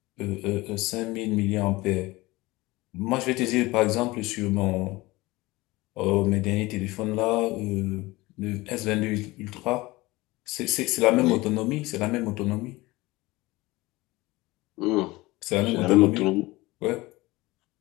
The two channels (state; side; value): quieter; right; 20.8 dB